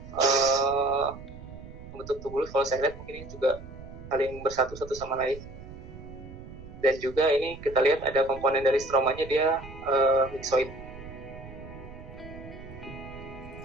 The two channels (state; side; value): noise; right; rumble, 15 dB below the sound